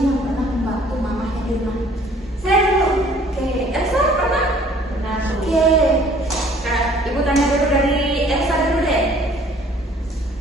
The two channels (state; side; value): normal; both; correlation 0.56